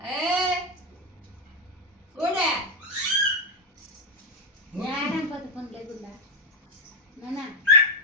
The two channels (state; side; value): normal; both; correlation 0.06